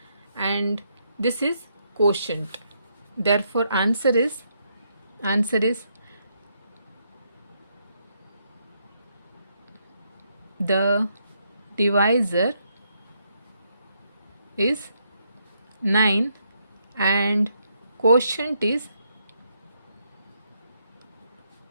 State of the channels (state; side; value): inverted; both; correlation -0.76